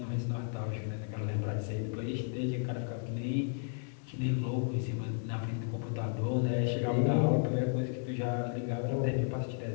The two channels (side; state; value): right; silent; 55 dB below the other